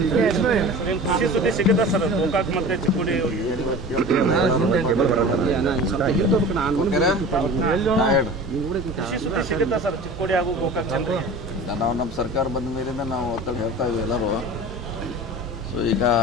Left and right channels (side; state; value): both; normal; correlation 0.37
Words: ಖುಷಿ ಸುದ್ದಿ ಸಿಗುತ್ತೆ ಸರ್ ಗೋಕಾಕ್ ಮತ್ತೆ ಚಿಕ್ಕೋಡಿ ಖುಷಿ ಸುದ್ದಿ ಸಿಗುತ್ತೆ ಸರ್ ಚಿಕ್ಕೋಡಿ ಹಾಗೂ ಗೋಕಾಕ್ ಜನರಿಗೆ. ನಾವು ನಮ್ಮ ಸರ್ಕಾರ ಬಂದ ಮೇಲಿಂದ ನಾವು ಒತ್ತಡ ಹೇಳ್ತಾ ಇದ್ದೀವಿ ಎಲ್ಲರೂ. ಸೊ ಈಗ